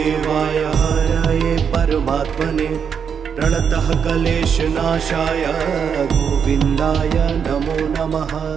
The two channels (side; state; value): left; quieter; 7.0 dB